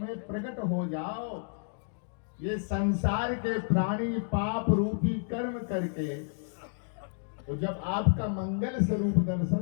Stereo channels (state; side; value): silent; right; digital silence